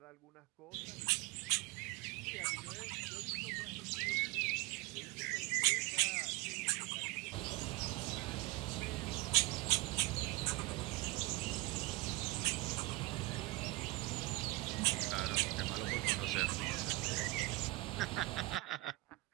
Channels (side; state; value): left; quieter; 21.9 dB